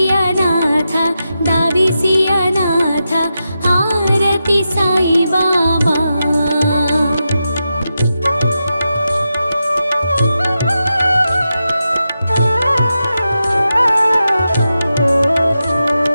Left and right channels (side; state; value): both; inverted; correlation -0.89